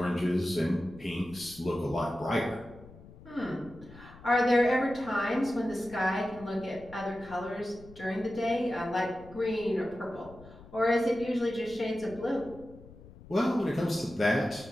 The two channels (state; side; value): noise; left; rumble, 20 dB below the sound